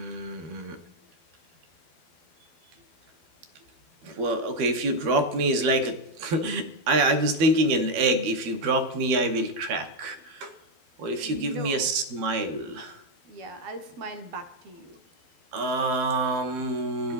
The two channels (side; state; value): left; late; 12 ms